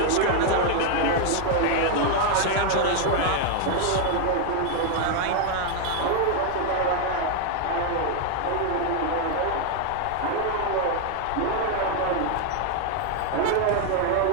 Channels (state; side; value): different; both; correlation 0.00